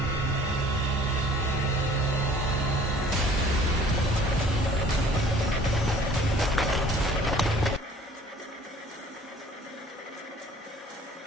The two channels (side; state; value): both; normal; correlation 0.52